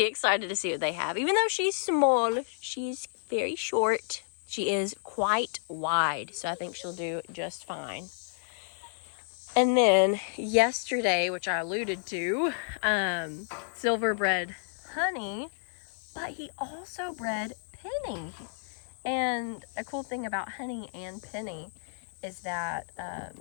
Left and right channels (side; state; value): right; silent; digital silence